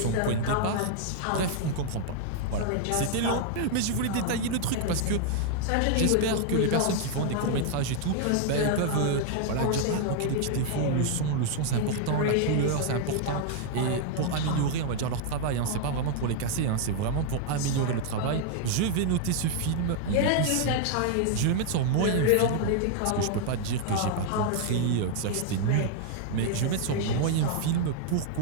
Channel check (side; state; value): both; different; correlation 0.00